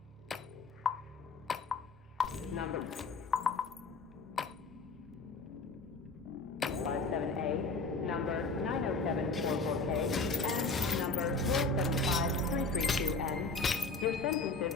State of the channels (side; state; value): right; quieter; 3.8 dB